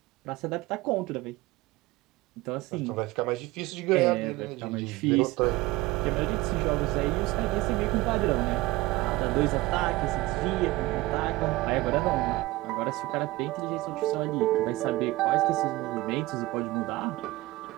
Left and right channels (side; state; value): left; quieter; 19.2 dB